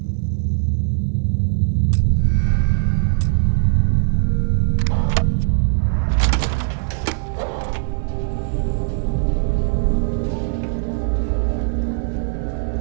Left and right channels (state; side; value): silent; left; 66 dB below the other